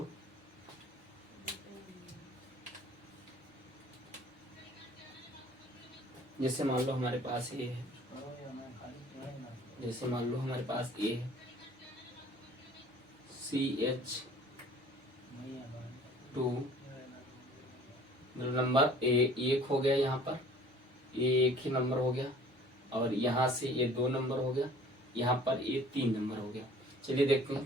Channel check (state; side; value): normal; both; correlation 0.50